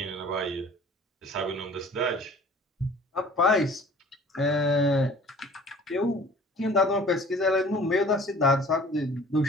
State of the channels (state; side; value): normal; both; correlation 0.48